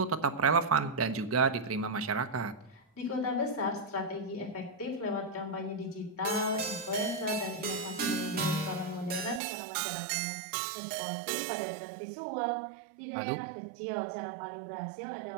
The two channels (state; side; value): drops out; left; at 9.4 s